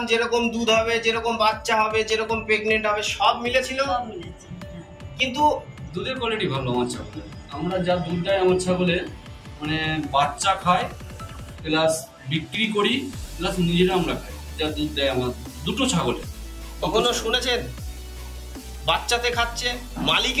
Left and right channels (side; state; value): both; identical; correlation 1.00